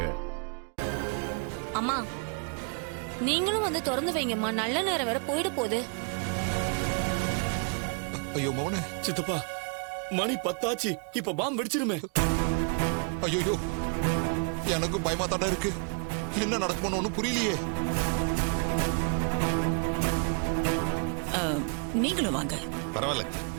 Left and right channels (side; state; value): left; quieter; 39.8 dB